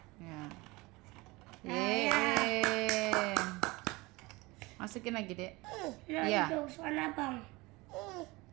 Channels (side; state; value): left; quieter; 22.8 dB